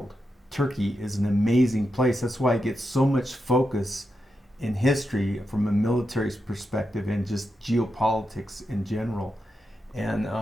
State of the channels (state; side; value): normal; both; correlation 0.87